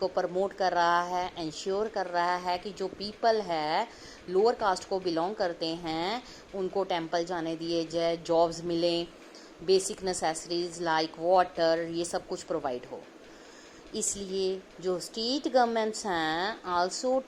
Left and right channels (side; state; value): both; identical; correlation 1.00